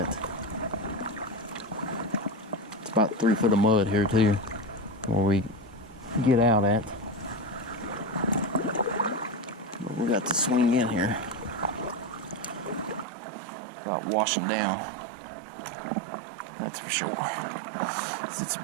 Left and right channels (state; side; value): drops out; left; at 13.1 s